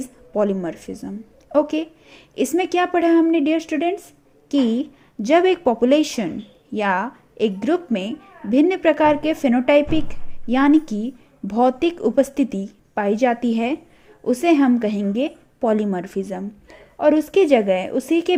polymorphism. Okay, इसमें क्या पढ़ा हमने dear students कि जब एक population या एक ग्रुप में भिन्न प्रकार के फेनोटाइपिक यानी कि भौतिक उपस्थिति पाई जाती है उसे हम कहेंगे पॉलीमॉर्फिज्म, और उसकी जगह उसी के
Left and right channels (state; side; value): identical; both; correlation 1.00